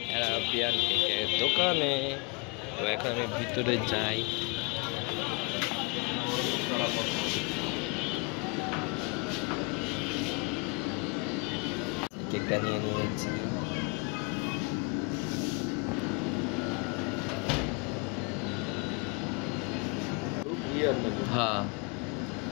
অ্যারাবিয়ান কেকের দোকানে। তো এখন আমি ভিতরে যাই, কেকটা নিয়ে নিয়েছি। হ্যাঁ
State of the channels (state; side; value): quieter; right; 31.5 dB